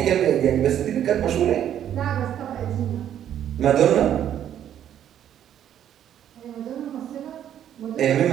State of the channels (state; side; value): quieter; left; 10.3 dB